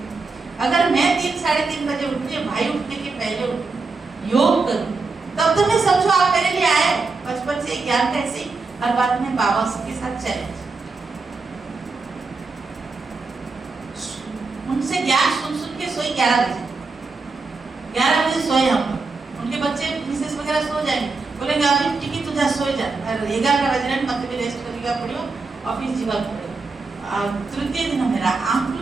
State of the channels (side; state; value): left; quieter; 4.1 dB